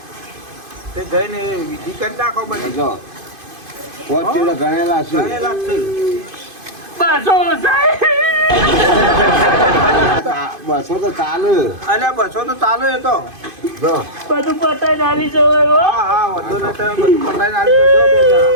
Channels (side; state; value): left; late; 2.5 ms